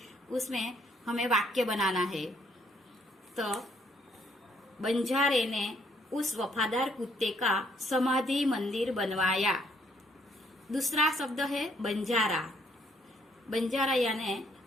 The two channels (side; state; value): both; normal; correlation 0.68